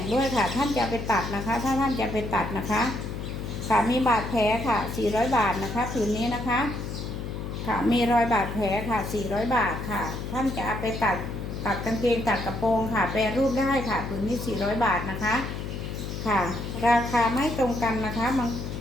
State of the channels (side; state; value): left; noise; hum, 6 dB below the sound